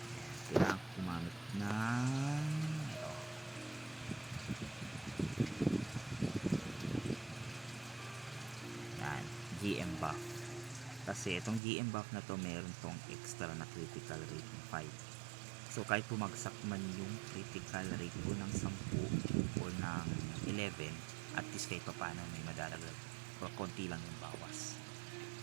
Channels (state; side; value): drops out; left; at 11.6 s